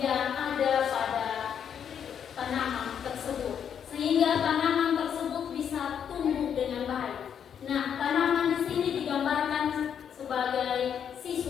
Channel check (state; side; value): quieter; right; 8.2 dB